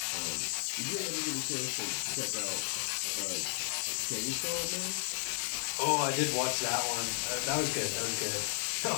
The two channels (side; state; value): right; silent; 55 dB below the other